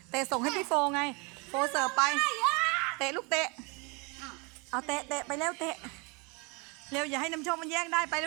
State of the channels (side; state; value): left; quieter; 30.2 dB